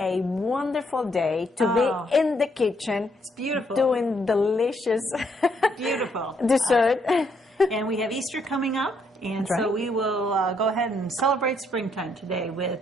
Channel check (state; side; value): normal; both; correlation 0.73